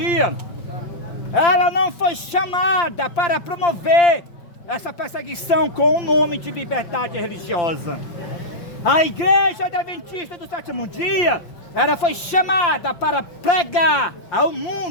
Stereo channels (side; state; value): right; late; 5.8 ms